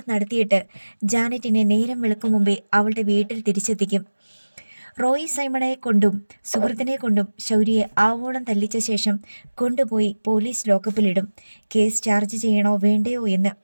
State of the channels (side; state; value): both; inverted; correlation -1.00